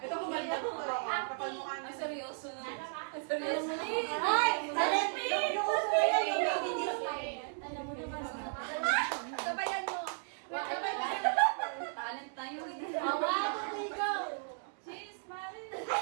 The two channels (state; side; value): silent; left; digital silence